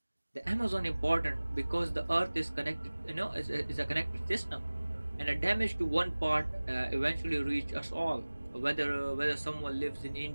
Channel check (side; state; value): both; inverted; correlation -1.00